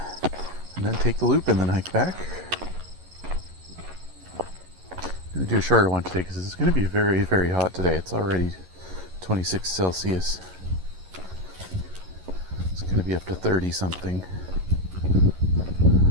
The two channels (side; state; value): left; late; 11 ms